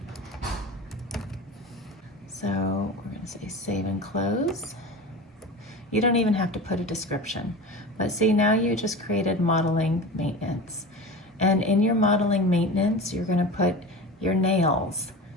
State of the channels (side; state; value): both; normal; correlation 0.31